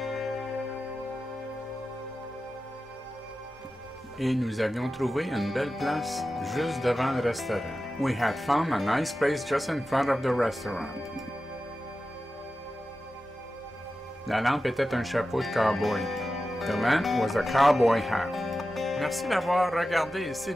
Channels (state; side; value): normal; both; correlation 0.93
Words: Et nous avions trouvé une belle place juste devant le restaurant. We had found a nice place just in front of the restaurant. La lampe était un chapeau de cowboy. The lamp was a cowboy hat. Merci d'avoir regardé. S'il